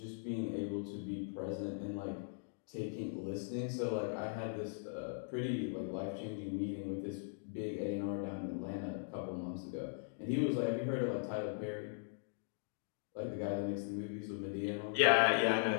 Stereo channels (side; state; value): right; silent; digital silence